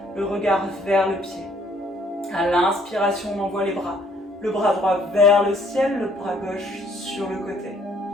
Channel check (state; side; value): normal; both; correlation 0.63